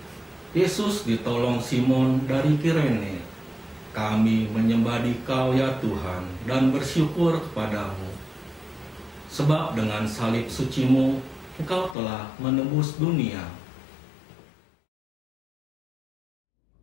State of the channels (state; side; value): drops out; right; at 12.0 s